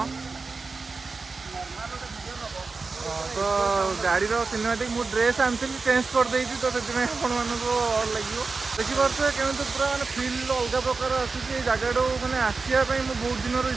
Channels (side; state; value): left; quieter; 4.2 dB